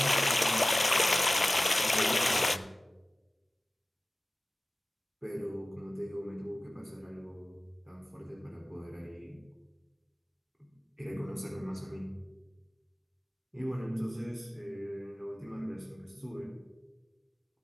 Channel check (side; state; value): both; normal; correlation 0.97